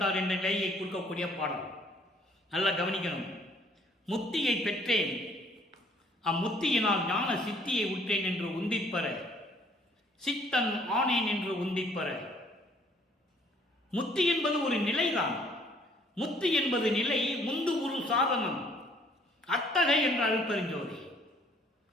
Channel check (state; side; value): normal; both; correlation 0.61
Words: என்ற நிலையை கொடுக்கக்கூடிய பாடல். நல்லா கவனிக்கணும். முத்தியை பெற்றேன், அம்முத்தியினால் ஞான சித்தியை உற்றேன் என்று உந்திப்பெற, சித்தன் ஆனேன் என்று உந்திப்பெற. முத்தி என்பது ஒரு நிலைதான். முத்தி என்பது நிலை, முந்து ஒரு சாதனம். அத்தகை என்ற அருட்பெருஞ்சோதி